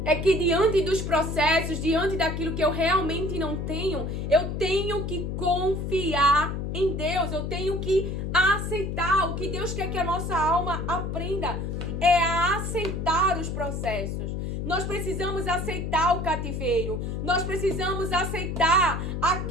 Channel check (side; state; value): left; noise; hum, 3 dB below the sound